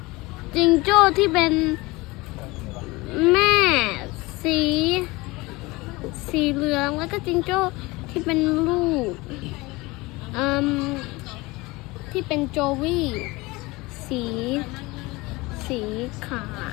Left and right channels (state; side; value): quieter; right; 22.4 dB